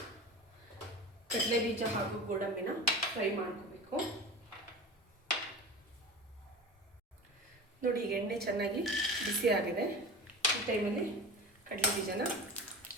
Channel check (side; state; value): both; normal; correlation 0.33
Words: ಕಡಲೆ ಬೀಜ ಹಾಗೂ ಗೋಡಂಬಿನ ಫ್ರೈ ಮಾಡ್ಕೋಬೇಕು. ನೋಡಿ, ಈಗ ಎಣ್ಣೆ ಚೆನ್ನಾಗಿ ಬಿಸಿ ಆಗಿದೆ. ಈ ಟೈಮಲ್ಲಿ ಕಡಲೆ ಬೀಜನ